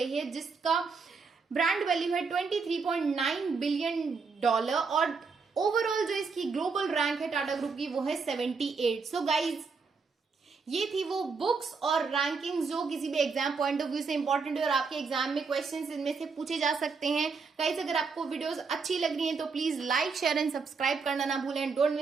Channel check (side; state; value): left; quieter; 4.9 dB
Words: है, जिसका ब्रांड वैल्यू है $23.9 बिलियन, और ओवरऑल जो इसकी ग्लोबल रैंक है टाटा ग्रुप की वो है 78। सो गाइज ये थी वो बुक्स और रैंकिंग्स जो किसी भी एग्जाम पॉइंट ऑफ व्यू से इंपॉर्टेंट है, और आपके एग्जाम में क्वेश्चंस इनमें से पूछे जा सकते हैं। गाइज अगर आपको वीडियोस अच्छी लग रही हैं तो please like share and subscribe करना ना भूलें। Don't